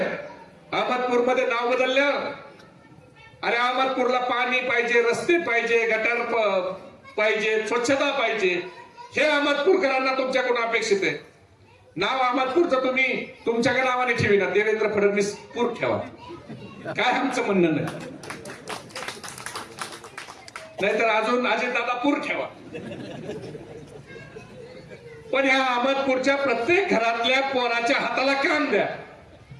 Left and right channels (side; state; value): both; identical; correlation 1.00